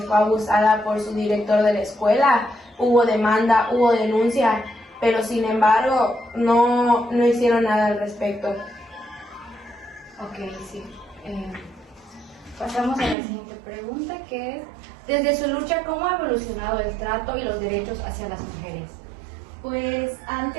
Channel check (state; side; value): drops out; left; at 13.2 s